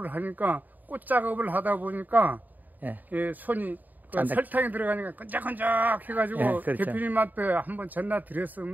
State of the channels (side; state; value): left; late; 0.085 ms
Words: 하니까 꽃 작업을 하다 보니까 예. 예, 손이 그 짠다. 설탕이 들어가니까 끈적끈적 해가지고 예, 그렇죠. 대표님한테 한번 전화